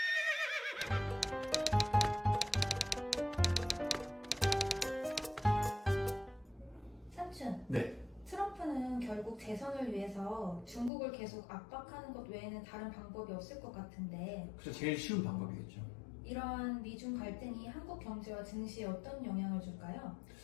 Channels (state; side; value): drops out; right; at 10.9 s